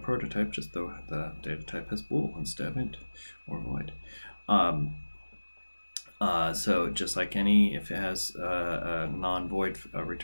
prototype, just the data type has bool instead of int or void. So just like if it has a non-void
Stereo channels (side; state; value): both; inverted; correlation -1.00